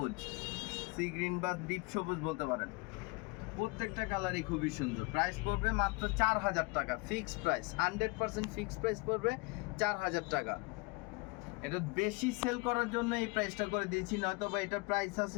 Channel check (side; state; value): right; quieter; 27.1 dB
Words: সি গ্রিন বা ডিপ সবুজ বলতে পারেন। প্রত্যেকটা কালারই খুবই সুন্দর। প্রাইস পড়বে মাত্র 4000 টাকা, ফিক্সড প্রাইস, 100% ফিক্সড প্রাইস পড়বে 4000 টাকা। এটা বেশি সেল করার জন্য এই প্রাইসটা করে দিয়েছি, নয়তো বা এটার প্রাইস